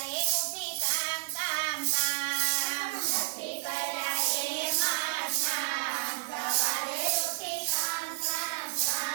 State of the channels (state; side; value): silent; left; digital silence